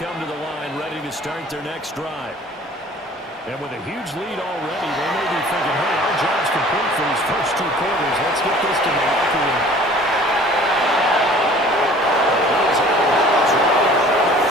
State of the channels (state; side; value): normal; both; correlation 0.49